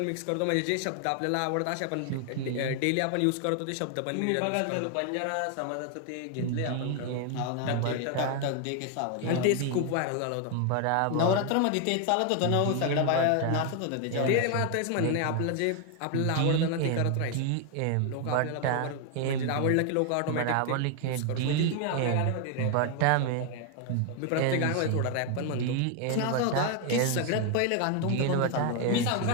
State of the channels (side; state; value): both; different; correlation 0.00